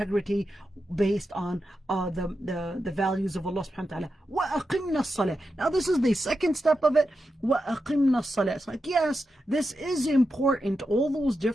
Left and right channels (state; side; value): normal; both; correlation 0.88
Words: based on the values of Allah subhanahu wa ta'ala. وَأَقِمْنَا الصَّلَاةِ. Now this is the second step of it. وَأَقِمْنَا الصَّلَاةِ. It's like, yes, this is important. All those